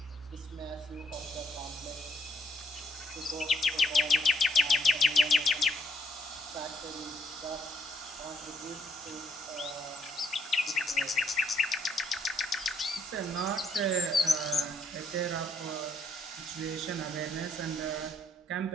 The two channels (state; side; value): normal; both; correlation 0.71